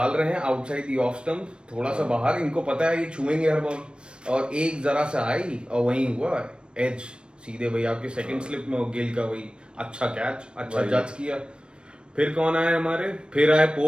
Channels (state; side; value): late; left; 0.055 ms